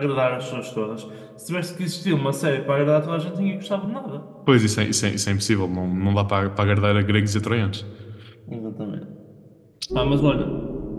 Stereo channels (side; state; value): both; identical; correlation 1.00